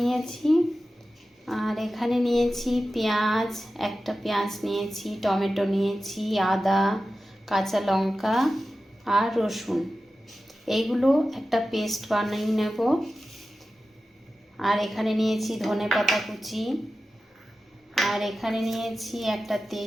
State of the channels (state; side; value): normal; both; correlation 0.94